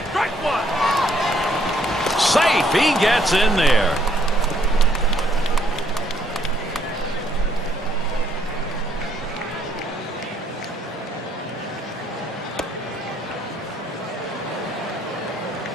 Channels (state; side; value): normal; both; correlation 0.68